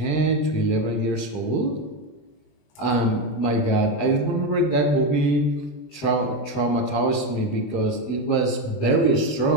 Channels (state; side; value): late; right; 20 ms